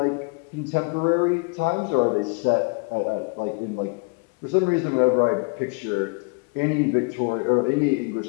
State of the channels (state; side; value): quieter; right; 32.8 dB